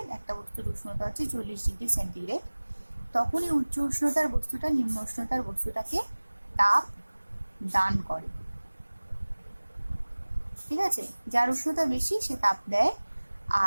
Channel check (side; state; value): both; inverted; correlation -1.00